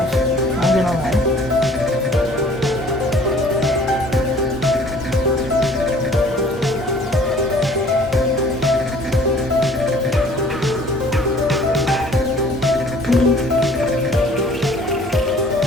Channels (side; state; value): both; normal; correlation 0.53